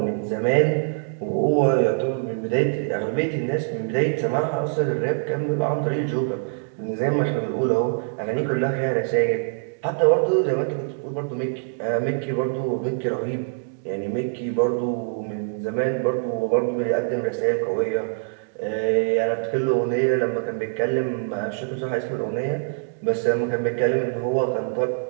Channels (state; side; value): silent; left; digital silence